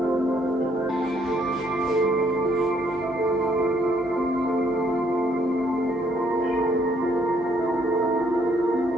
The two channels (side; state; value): both; normal; correlation 0.68